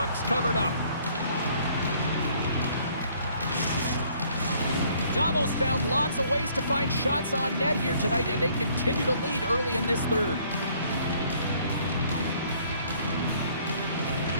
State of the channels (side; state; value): both; inverted; correlation -0.61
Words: covered up. Davos found lots of ways to find shots on net here tonight, and they continue to lead early in this third.